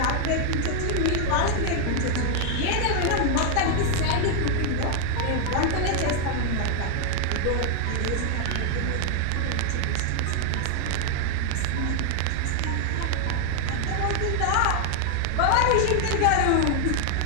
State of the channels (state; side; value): different; both; correlation 0.00